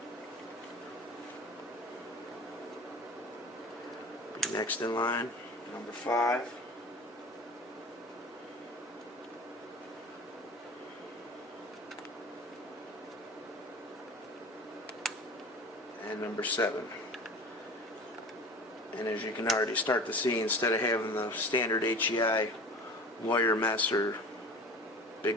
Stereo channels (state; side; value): normal; both; correlation 0.38